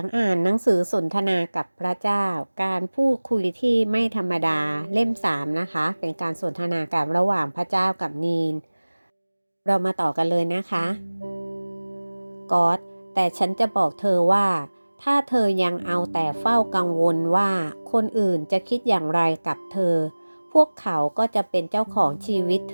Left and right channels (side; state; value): both; inverted; correlation -1.00